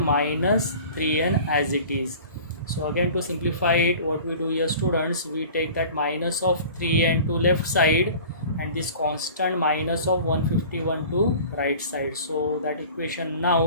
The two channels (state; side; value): inverted; both; correlation -0.42